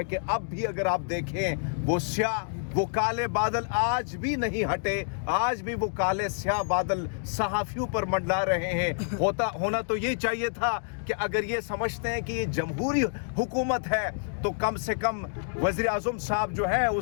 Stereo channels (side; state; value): right; silent; digital silence